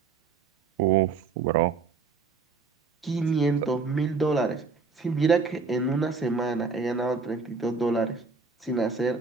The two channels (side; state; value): left; quieter; 4.7 dB